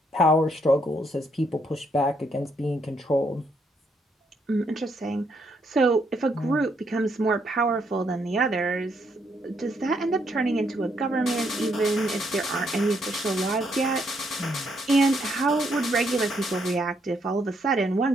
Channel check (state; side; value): normal; both; correlation 0.74